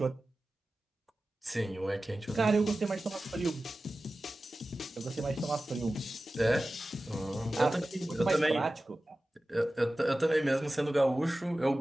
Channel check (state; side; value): normal; both; correlation 0.95